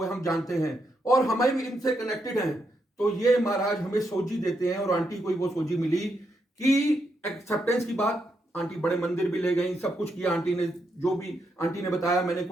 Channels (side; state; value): both; normal; correlation 0.81